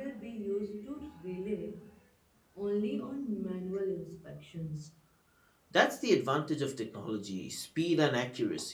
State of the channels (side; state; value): both; identical; correlation 1.00